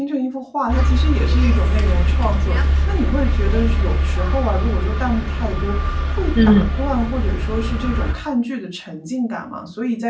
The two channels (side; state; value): both; identical; correlation 1.00